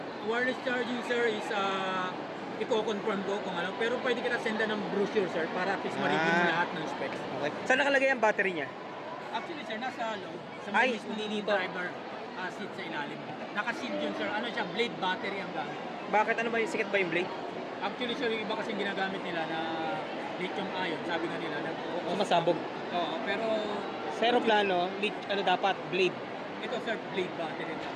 Wireless charging sir is i-confirm ko kung ano, pero pwede kita senda ng brochure sir para at least ma-review mo lahat ng specs. Okay. Saan nakalagay ang battery niya? Actually sir, nasa loob, sa Ay, mismong hindi dito. driver seat sa ilalim. Naka-sealed yun sir, ano siya, blade battery ang gamit. Bakit? Ano ba yung sikat ba yung blade? Actually sir, yung iba kasi ginagamit nila na lithium ion, sabi nga nila na Masabog. oo, pero Zero plano, ano dapat? Blade. ito sir, blade battery na.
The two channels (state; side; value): identical; both; correlation 1.00